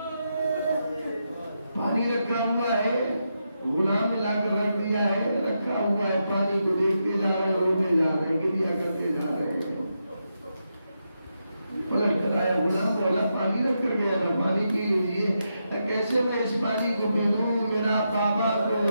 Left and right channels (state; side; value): inverted; both; correlation -0.85